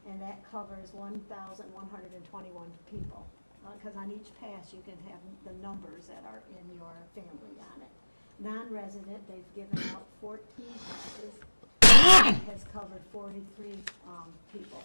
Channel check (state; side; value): inverted; both; correlation -1.00